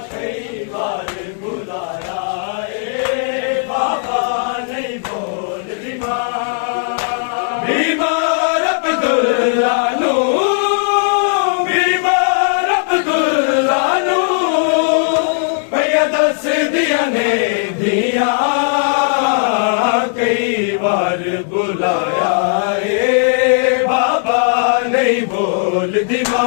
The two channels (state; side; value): silent; right; digital silence